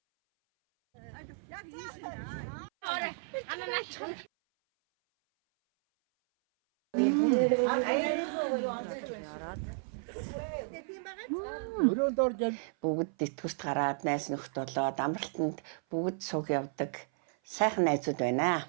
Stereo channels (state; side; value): silent; left; 56 dB below the other